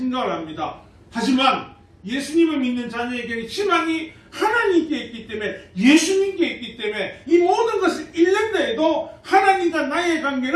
합니다. 하지만 예수님을 믿는 자녀에게는 희망이 하나님께 있기 때문에, 예수님께 있기 때문에 이 모든 것을 잃는다 해도 하나님 하나님과 나의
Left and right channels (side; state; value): both; identical; correlation 1.00